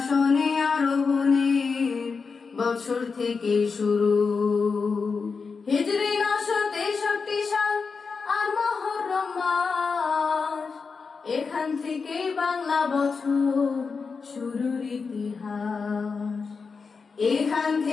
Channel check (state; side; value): quieter; right; 5.0 dB